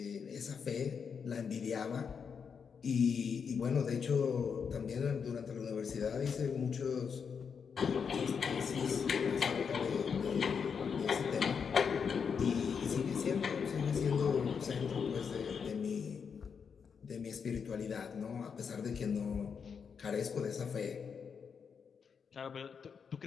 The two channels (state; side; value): quieter; right; 6.4 dB